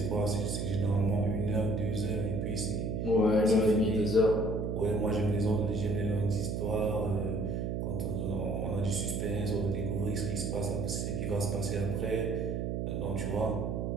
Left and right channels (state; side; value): noise; right; hum, 1 dB below the sound